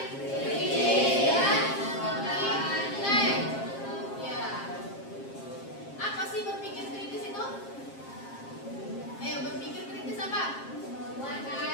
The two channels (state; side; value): late; right; 7.4 ms